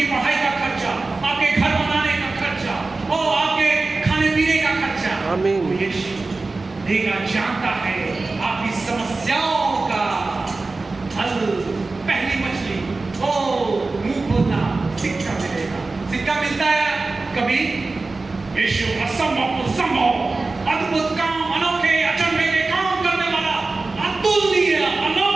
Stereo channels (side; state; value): left; quieter; 3.6 dB